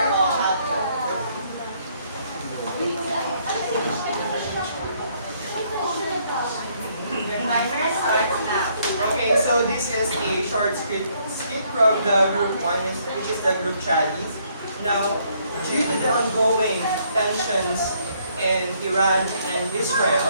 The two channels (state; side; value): inverted; both; correlation -0.68